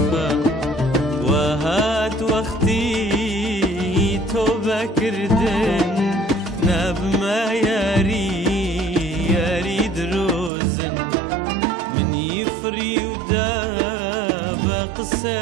وهات وقتي توبة كردن ناب ما ياري دروزن من يفري وداب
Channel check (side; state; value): left; drops out; at 10.5 s